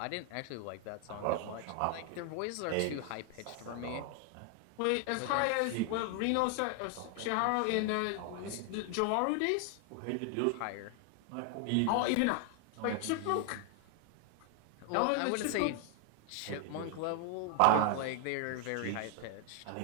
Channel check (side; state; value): both; different; correlation 0.00